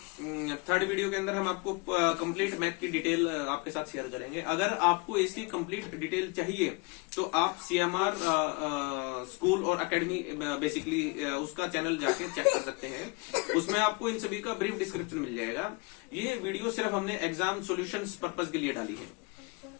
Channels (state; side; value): quieter; right; 28.9 dB